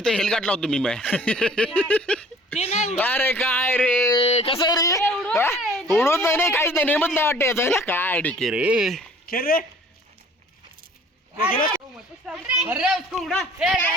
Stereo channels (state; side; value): normal; both; correlation 0.52